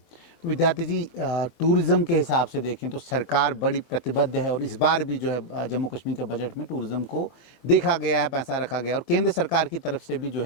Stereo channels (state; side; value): late; right; 24 ms